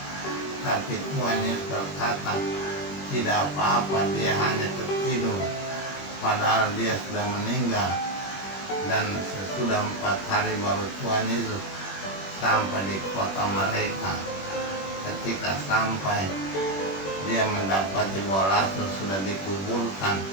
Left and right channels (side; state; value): right; late; 21 ms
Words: Tapi Tuhan Yesus berkata, tidak apa-apa, dia hanya tertidur, padahal dia sudah meninggal. Dan sesudah 4 hari baru Tuhan Yesus sampai di kota mereka. Ketika sampai, dia mendapati bahwa Lazarus sudah dikuburkan,